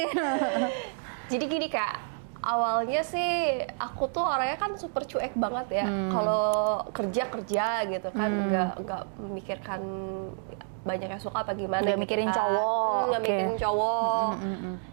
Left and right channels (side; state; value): left; silent; digital silence